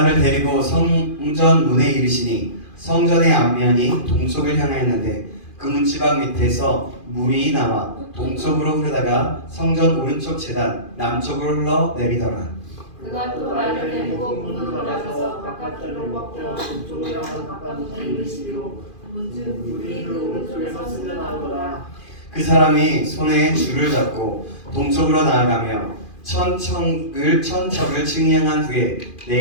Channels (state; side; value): late; right; 2.4 ms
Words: 데리고 성전 문에 이르시니 성전의 앞면이 동쪽을 향하였는데 그 문지방 밑에서 물이 나와 동쪽으로 흐르다가 성전 오른쪽 제단 남쪽으로 흘러 내리더라. 그가 또 나를 데리고 문으로 나가서 바깥길로 꺾여 동쪽으로 향하여 바깥문에 이르시리로 문즉 물이 그 오른쪽에서 흘러나오더라. 그 사람이 손에 줄을 잡고 동쪽으로 나아가며 천척을 측량한 후에